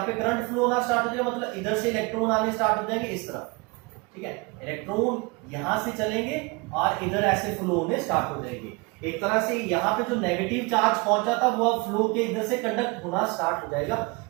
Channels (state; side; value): quieter; left; 27.7 dB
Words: पे करंट फ्लो होना स्टार्ट हो जाएगा, मतलब इधर से इलेक्ट्रॉन आने स्टार्ट हो जाएंगे इस तरफ, ठीक है। इलेक्ट्रॉन यहां से चलेंगे और इधर ऐसे फ्लो होने स्टार्ट हो जाएंगे। एक तरह से यहाँ पे जो नेगेटिव चार्ज पहुंचा था वो फ्लो के इधर से कंडक्ट होना स्टार्ट हो जाएगा,